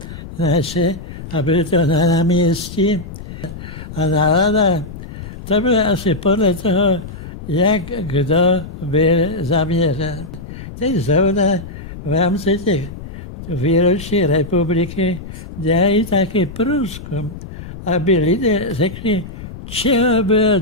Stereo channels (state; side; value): noise; left; rumble, 12 dB below the sound